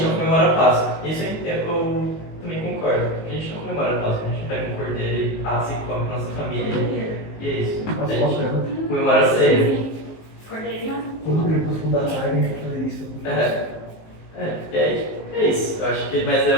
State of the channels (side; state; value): right; late; 19 ms